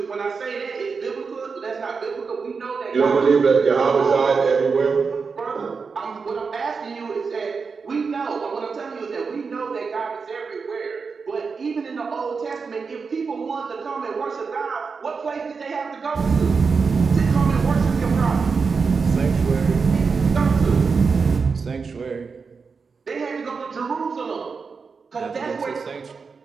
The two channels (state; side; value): quieter; left; 5.1 dB